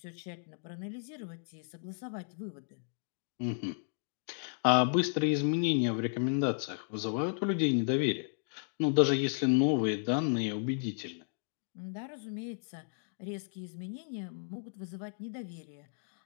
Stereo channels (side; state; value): right; silent; digital silence